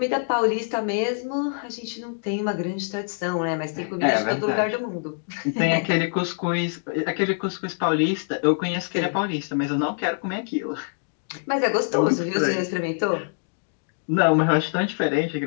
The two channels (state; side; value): silent; right; digital silence